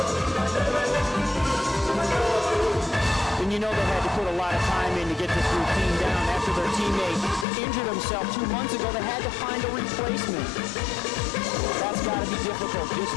And you know they had to put a lot of time in to get this routine down. After their teammate injured himself 2 months ago, they had to find a replacement. That's got to be difficult just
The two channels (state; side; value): drops out; right; at 7.5 s